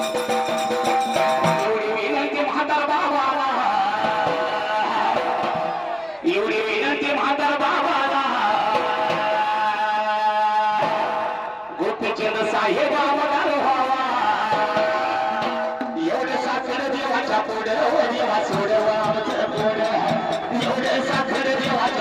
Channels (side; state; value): both; identical; correlation 1.00